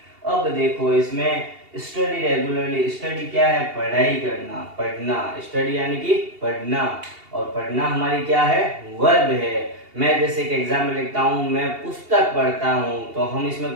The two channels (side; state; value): left; late; 2.8 ms